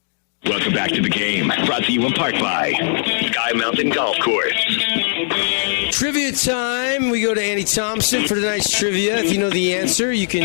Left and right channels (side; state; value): right; silent; digital silence